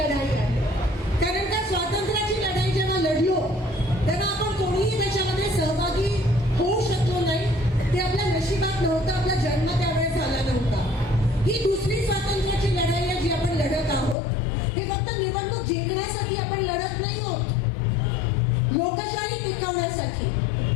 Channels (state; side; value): drops out; right; at 14.2 s